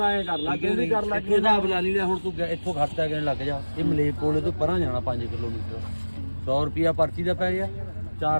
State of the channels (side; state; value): both; inverted; correlation -1.00